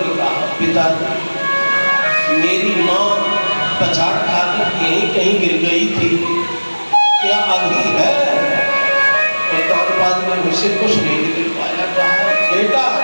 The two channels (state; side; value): inverted; both; correlation -1.00